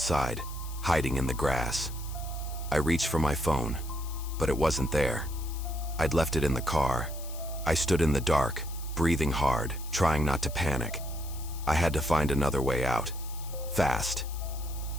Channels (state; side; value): noise; left; hiss, 15 dB below the sound